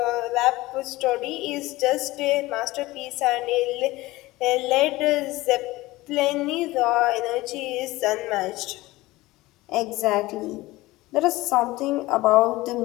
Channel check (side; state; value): right; quieter; 19.1 dB